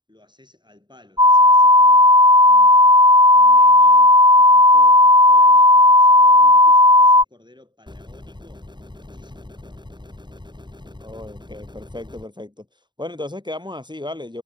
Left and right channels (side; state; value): left; late; 0.22 ms